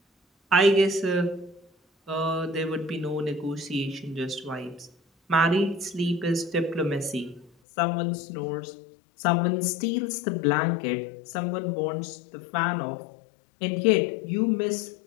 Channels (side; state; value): right; drops out; at 7.5 s